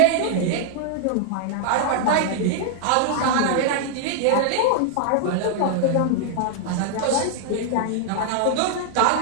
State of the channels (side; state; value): both; different; correlation -0.01